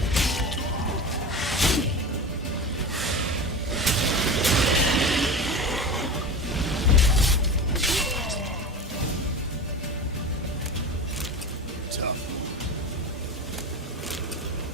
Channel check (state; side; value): normal; both; correlation 0.28